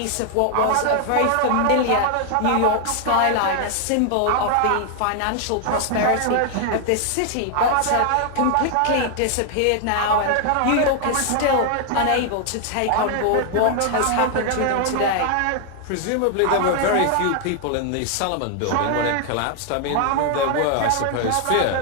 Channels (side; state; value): both; different; correlation 0.00